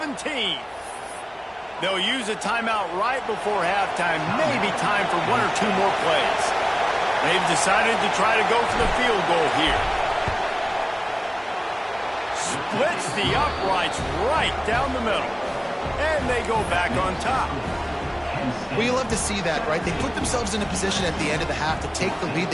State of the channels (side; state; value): both; identical; correlation 1.00